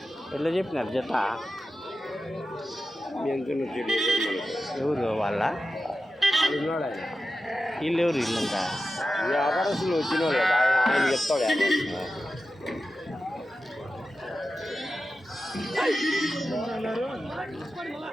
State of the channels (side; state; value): both; normal; correlation 0.92